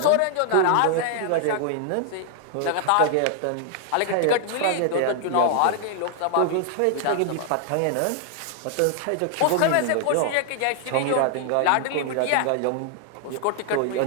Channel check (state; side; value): different; both; correlation 0.00